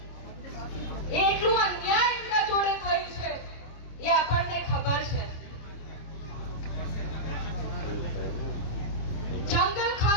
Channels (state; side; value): late; right; 25 ms